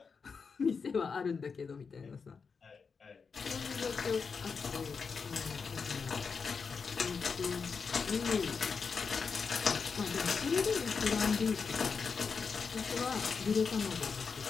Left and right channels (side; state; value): right; quieter; 5.4 dB